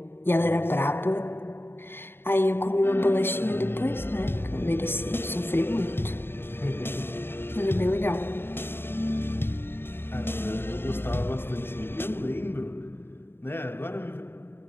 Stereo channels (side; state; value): right; late; 0.11 ms